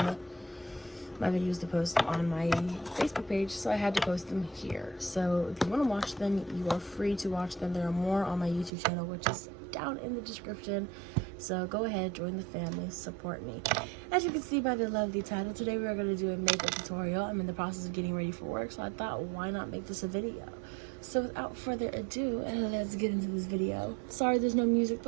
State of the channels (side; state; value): left; drops out; at 8.7 s